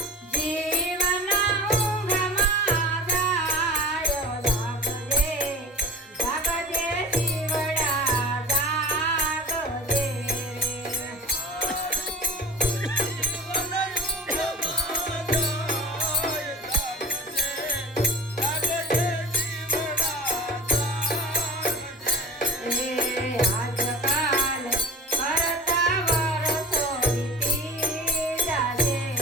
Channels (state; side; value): normal; both; correlation 0.36